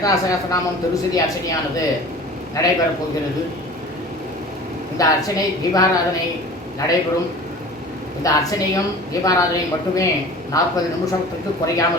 சகஸ்ரநாமம் திருசதி அர்ச்சனையானது நடைபெறப் போகிறது. இந்த அர்ச்சனை தீபாராதனை நடைபெறும். இந்த அர்ச்சனையும் தீபாராதனையும் மட்டுமே 40 நிமிஷத்துக்கு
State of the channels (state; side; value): normal; both; correlation 0.41